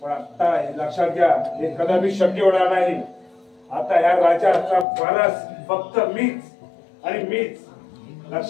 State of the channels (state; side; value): drops out; right; at 4.9 s